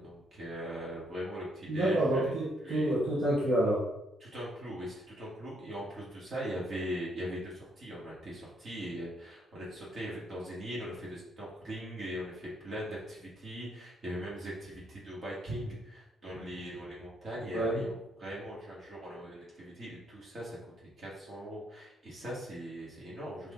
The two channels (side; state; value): both; normal; correlation 0.72